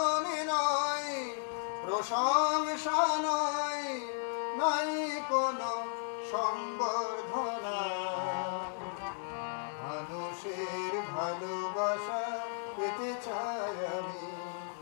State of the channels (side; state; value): right; silent; 55 dB below the other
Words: নয়, প্রশংসা নয়, নাই কোনো সংবর্ধনা। মানুষের ভালোবাসা পেতে চাই আমি,